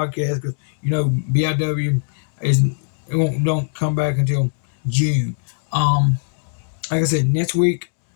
because BIW is it won't don't come back until June. Um, like I said, next week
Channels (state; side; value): silent; right; digital silence